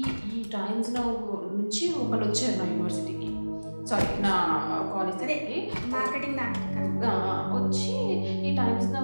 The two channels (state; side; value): inverted; both; correlation -1.00